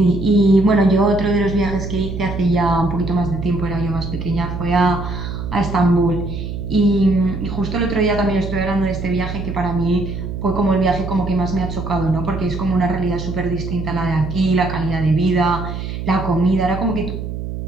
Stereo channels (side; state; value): right; noise; hum, 6 dB below the sound